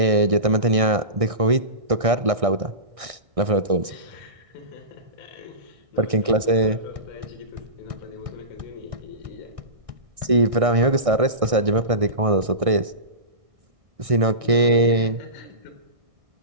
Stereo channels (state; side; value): late; left; 1.6 ms